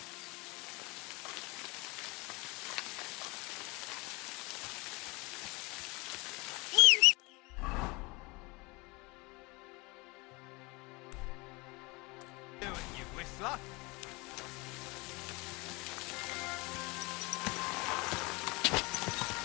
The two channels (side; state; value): right; quieter; 25.8 dB